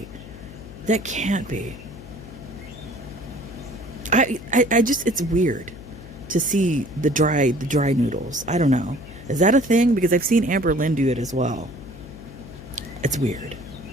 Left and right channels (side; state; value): left; noise; hum, 16 dB below the sound